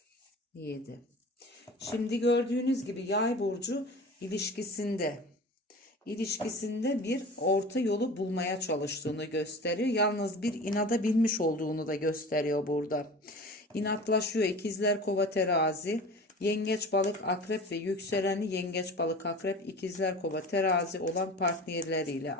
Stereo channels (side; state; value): both; normal; correlation 0.37